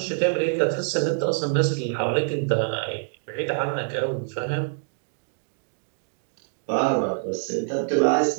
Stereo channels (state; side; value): silent; left; digital silence